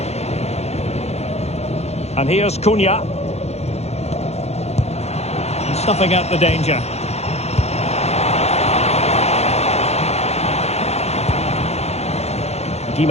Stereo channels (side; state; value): right; late; 0.31 ms